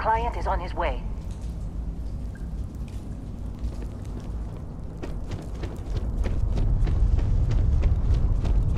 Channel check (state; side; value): identical; both; correlation 1.00